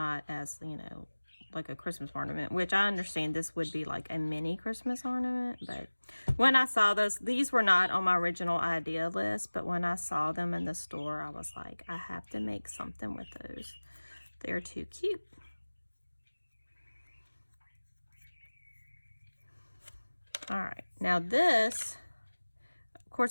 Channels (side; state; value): both; inverted; correlation -1.00